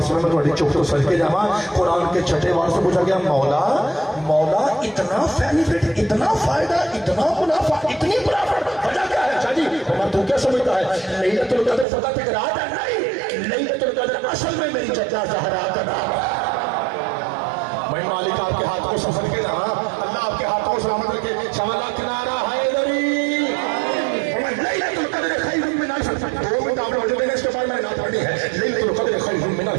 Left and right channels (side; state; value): left; drops out; at 11.9 s